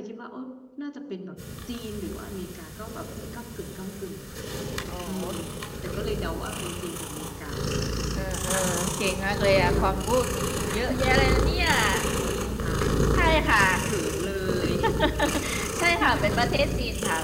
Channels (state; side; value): identical; both; correlation 1.00